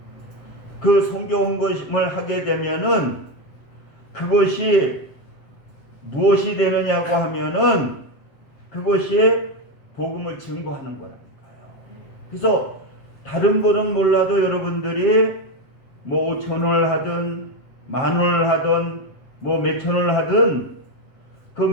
그 선교 헌금을 하게 되면은 그것이 무엇이 되느냐고 하면은 그것이 복음을 증거하는 거예요. 그래서 다른 거는 몰라도 여러분들이 5,000원을 하든 10,000원을 하든 몇천 원을 하든 그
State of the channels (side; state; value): right; late; 7.4 ms